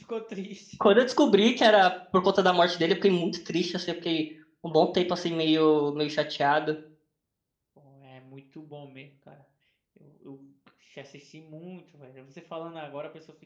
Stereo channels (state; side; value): identical; both; correlation 1.00